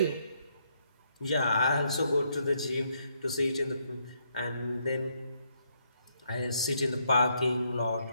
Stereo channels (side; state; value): both; inverted; correlation -0.74